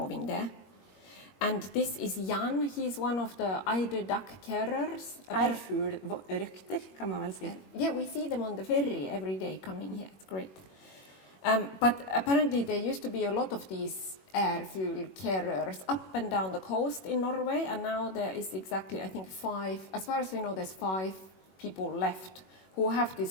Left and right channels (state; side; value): late; right; 21 ms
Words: there. And this is Jan, he's one of the eider duck carriers. Ærfuglrøkter, kan man vel si. Yeah, we see them on the ferry every day coming here, it's great. But apparently there used to be a lot of these ærfugl carriers up and down the coast in Norway, and now there is exactly, I think, 5, as far as we know, there's 5 people left who have